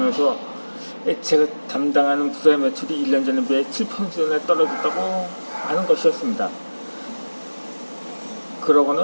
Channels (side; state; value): both; inverted; correlation -1.00